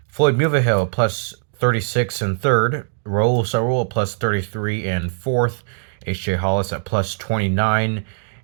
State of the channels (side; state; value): left; silent; 65 dB below the other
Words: Floyd Mulvihill plus 36 in third. Raul Sarul plus 33 in fourth. H.J. Hollis at plus 29